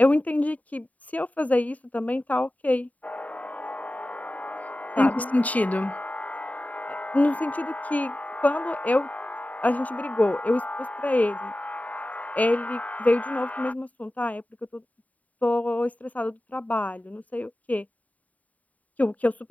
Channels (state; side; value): late; right; 0.071 ms